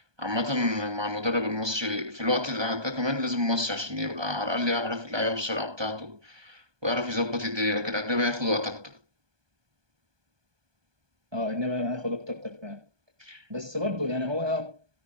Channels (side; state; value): left; late; 1.2 ms